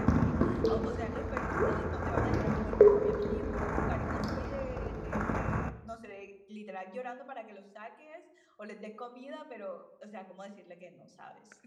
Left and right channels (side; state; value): both; identical; correlation 1.00